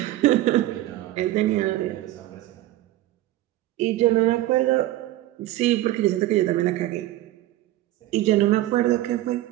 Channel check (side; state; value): left; quieter; 15.5 dB